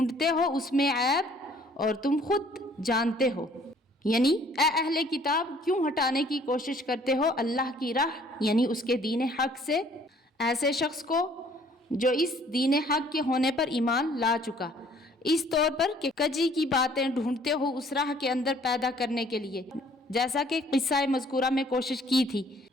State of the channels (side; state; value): both; normal; correlation 0.58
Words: ہو اس میں عیب اور تم خود جانتے ہو، یعنی اے اہل کتاب کیوں ہٹانے کی کوشش کرتے ہو اللہ کی راہ یعنی اس کے دین حق سے ایسے شخص کو جو اس دین حق کے ہونے پر ایمان لا چکا، اس طور پر کہ کجی کی باتیں ڈھونڈتے ہو اس راہ کے اندر پیدا کرنے کے لیے، جیسا کہ قصہ مذکورہ میں کوشش کی تھی،